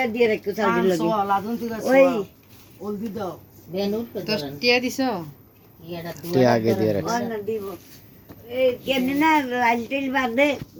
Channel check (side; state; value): both; identical; correlation 1.00